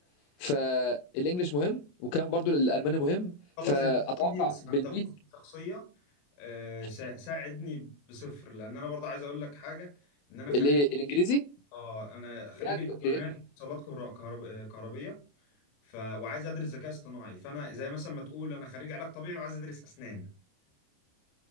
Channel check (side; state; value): right; late; 28 ms